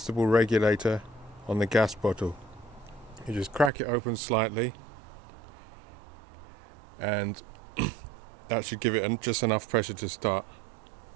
regulator on the gas bottle. You just crack it open slightly, and that should give it just enough pressure to start.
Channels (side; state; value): left; drops out; at 3.7 s